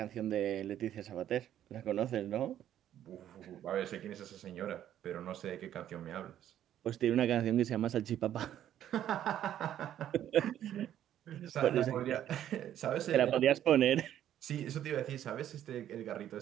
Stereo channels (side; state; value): left; quieter; 11.2 dB